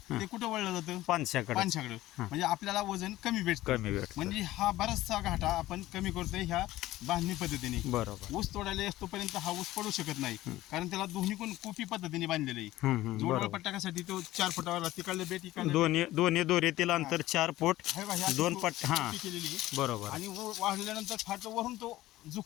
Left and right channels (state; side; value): quieter; right; 16.1 dB